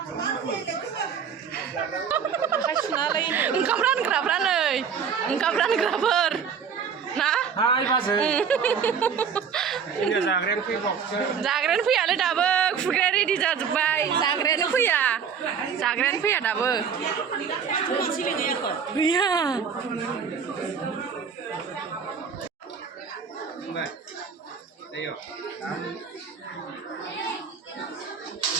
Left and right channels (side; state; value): left; quieter; 6.9 dB